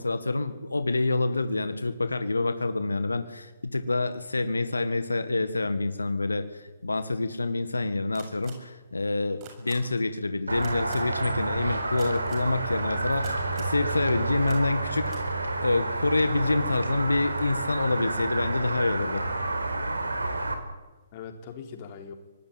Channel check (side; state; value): both; inverted; correlation -0.91